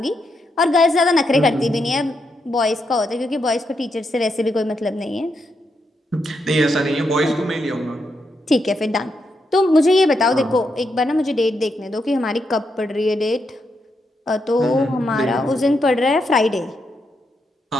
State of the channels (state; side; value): normal; both; correlation 0.82